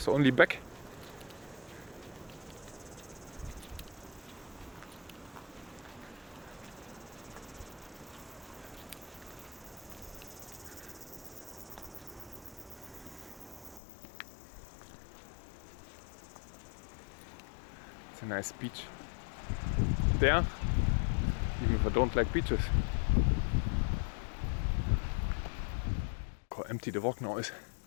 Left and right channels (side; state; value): right; drops out; at 13.8 s